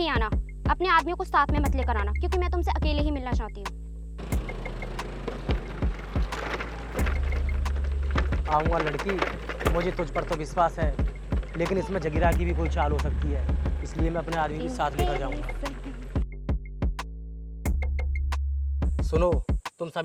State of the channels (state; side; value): identical; both; correlation 1.00